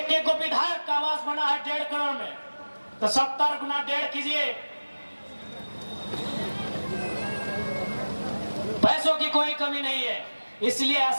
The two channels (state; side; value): inverted; both; correlation -1.00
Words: को विधायक का आवास बना है 1.5 करोड़ में। तो 70 गुना 1.5 कीजिए। पैसों की कोई कमी नहीं है। इसलिए